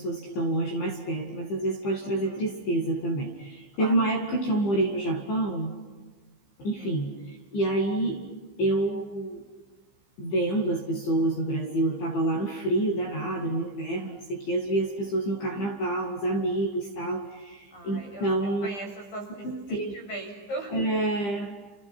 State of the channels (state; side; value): late; right; 15 ms